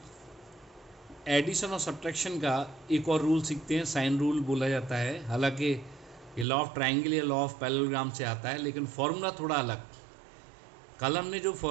एडिशन और सबट्रैक्शन का एक और रूल सीखते हैं। साइन रूल बोला जाता है। हालांकि ये लॉ ऑफ ट्रायंगल या लॉ ऑफ पैरेललोग्राम से आता है, लेकिन फॉर्मूला थोड़ा अलग। कल हमने जो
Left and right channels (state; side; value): drops out; left; at 6.5 s